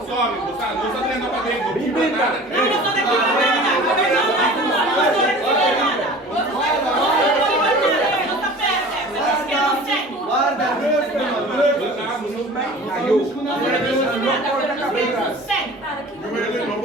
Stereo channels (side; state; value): both; normal; correlation 0.42